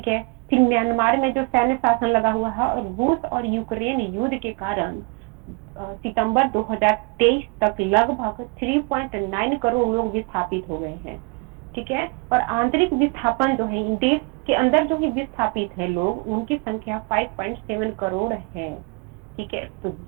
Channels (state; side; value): quieter; left; 32.7 dB